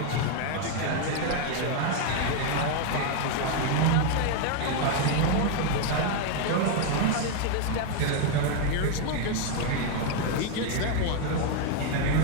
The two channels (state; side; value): different; both; correlation 0.01